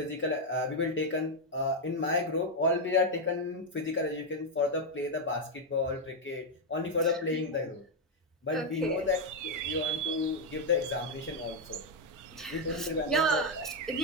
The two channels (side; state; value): both; normal; correlation 0.02